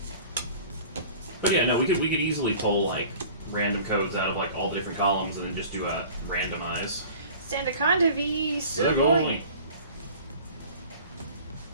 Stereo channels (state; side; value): inverted; both; correlation -0.44